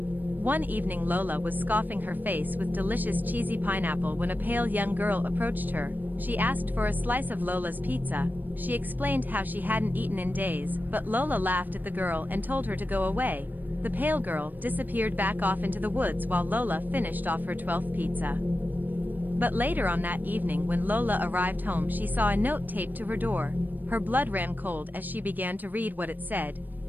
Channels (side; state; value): left; late; 0.088 ms